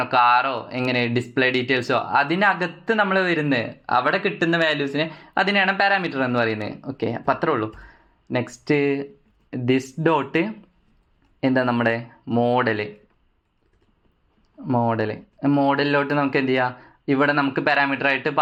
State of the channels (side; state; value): both; identical; correlation 1.00